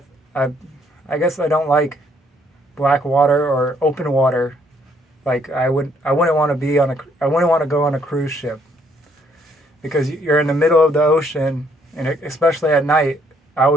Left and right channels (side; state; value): both; normal; correlation 0.67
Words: I guess I don't like black water or open water. Like I wouldn't want to be on a, I wouldn't want to go on a cruise ship because you're in the middle of the ocean, and especially at night. I